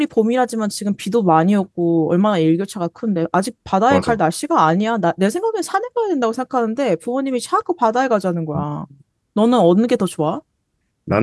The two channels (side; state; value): both; identical; correlation 1.00